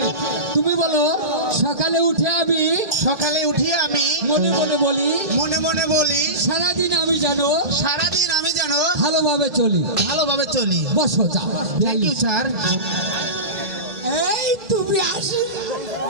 তুমি বলো সকালে উঠে আমি সকালে উঠি আমি মনে মনে বলি মনে মনে বলি সারাদিন আমি জানো সারাদিন আমি যেন ভালোভাবে চলি। ভালোভাবে চলি। বসো যাও। Thank you sir. এই তুমি আসো।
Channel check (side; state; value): left; late; 2.4 ms